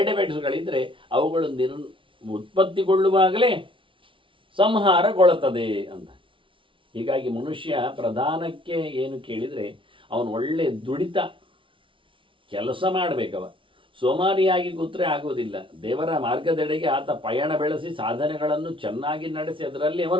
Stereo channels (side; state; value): left; late; 0.25 ms